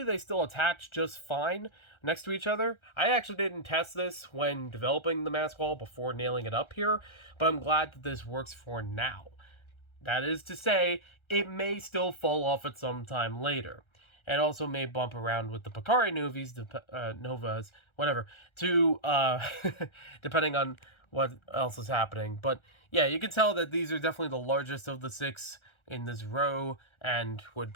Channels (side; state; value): right; late; 1.3 ms